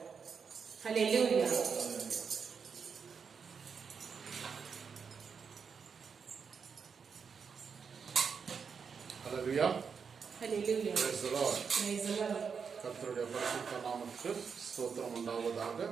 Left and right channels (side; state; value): left; quieter; 6.1 dB